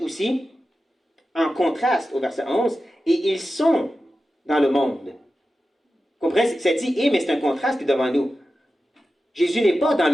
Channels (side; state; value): both; normal; correlation 0.93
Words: aussi, en contraste au verset 11, « et ils sont dans le monde ». Comprenez? Ça dit « et », mais c'est un contraste qui est devant nous. Jésus n'est pas dans